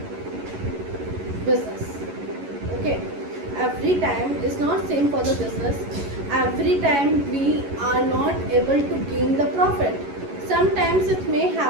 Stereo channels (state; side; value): late; left; 11 ms